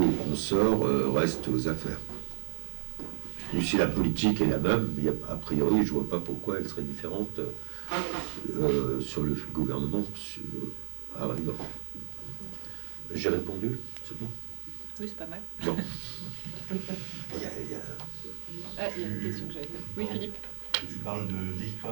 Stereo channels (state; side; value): silent; left; 56 dB below the other